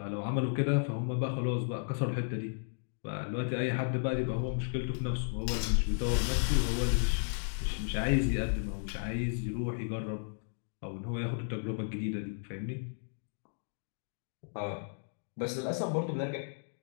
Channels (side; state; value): right; silent; digital silence